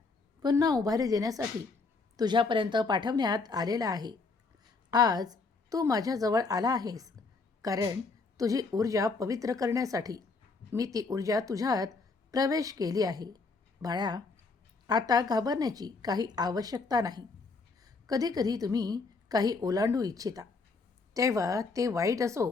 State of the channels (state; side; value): quieter; right; 4.1 dB